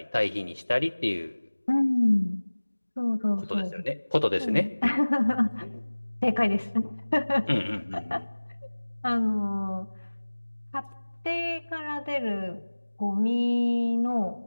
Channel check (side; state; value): both; inverted; correlation -1.00